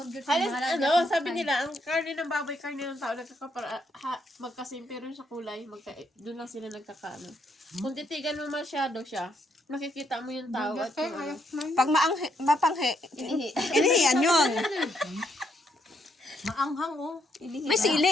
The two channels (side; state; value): both; normal; correlation 0.75